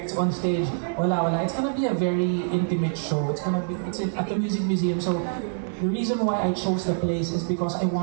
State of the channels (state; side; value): silent; left; digital silence